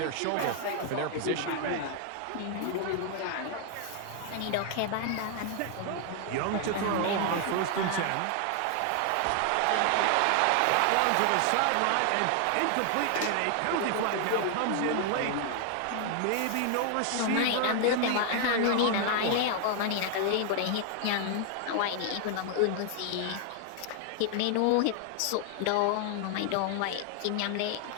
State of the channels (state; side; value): different; both; correlation 0.00